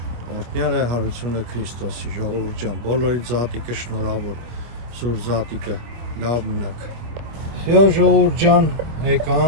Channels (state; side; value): late; left; 25 ms